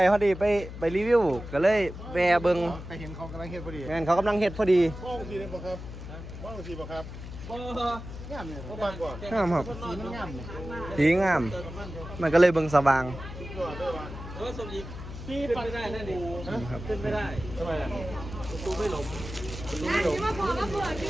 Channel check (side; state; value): left; noise; hum, 11 dB below the sound